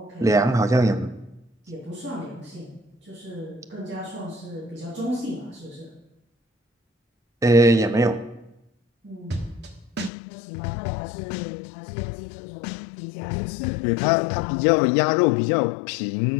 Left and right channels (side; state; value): right; drops out; at 10.1 s